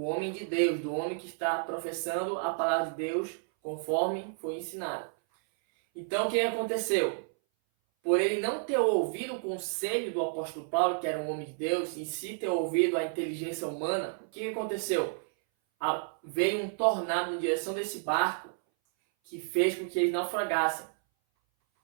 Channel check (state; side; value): silent; left; 57 dB below the other